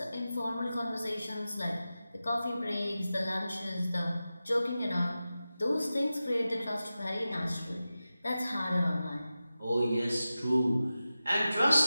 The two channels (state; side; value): inverted; both; correlation -0.94